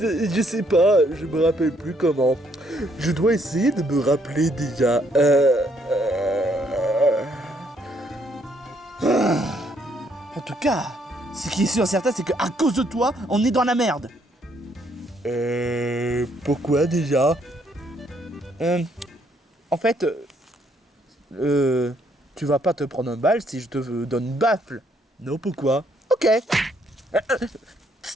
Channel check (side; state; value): both; normal; correlation 0.70